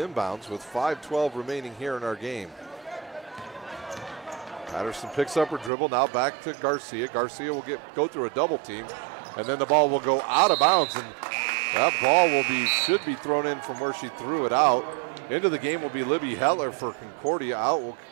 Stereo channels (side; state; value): left; drops out; at 5.7 s